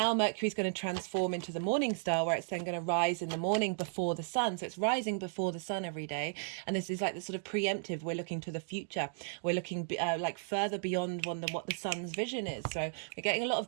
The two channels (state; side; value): silent; left; digital silence